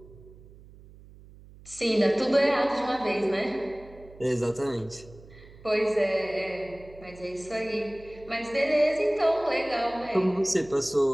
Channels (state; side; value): noise; right; hum, 21 dB below the sound